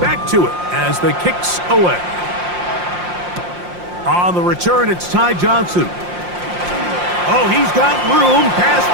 back to it as the kicks away. On the return, it's Ty Johnson. Oh, he's got room past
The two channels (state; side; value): late; left; 5.7 ms